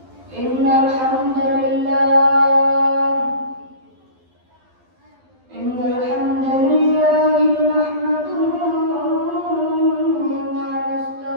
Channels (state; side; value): late; left; 12 ms